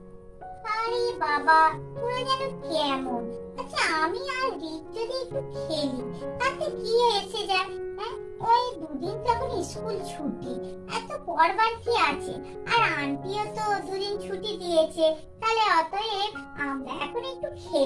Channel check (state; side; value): identical; both; correlation 1.00